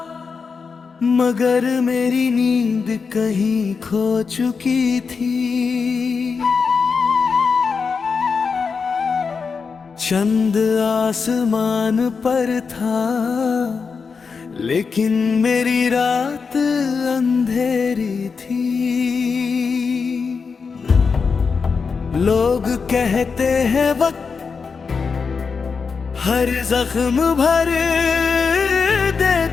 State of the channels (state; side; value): quieter; right; 5.3 dB